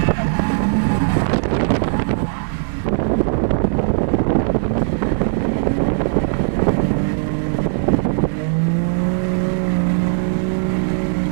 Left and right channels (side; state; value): left; silent; 67 dB below the other